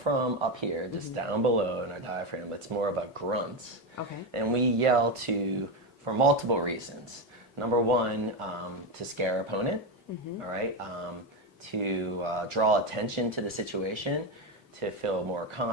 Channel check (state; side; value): normal; both; correlation 0.12